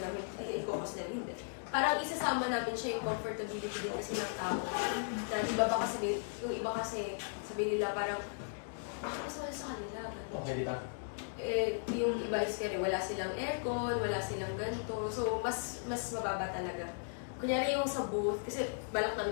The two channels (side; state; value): right; silent; digital silence